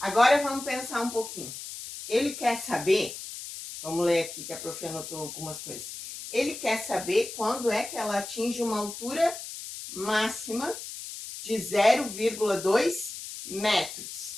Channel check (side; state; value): left; noise; hiss, 10 dB below the sound